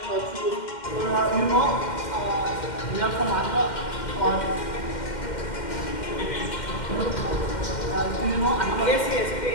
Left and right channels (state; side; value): late; right; 2.1 ms